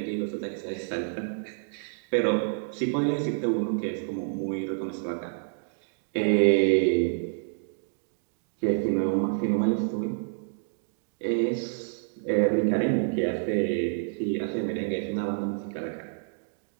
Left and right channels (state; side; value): silent; left; digital silence